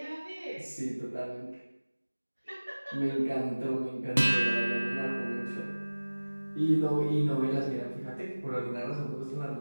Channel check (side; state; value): both; inverted; correlation -1.00